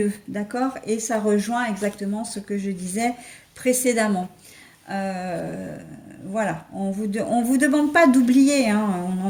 d'accord? Et ça rejoint exactement ce que je disais précédemment. Euh, voilà, on vous demande pas d'oublier, hein,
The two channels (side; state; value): both; identical; correlation 1.00